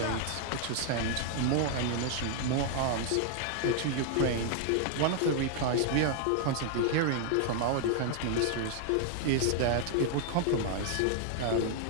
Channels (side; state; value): both; different; correlation 0.00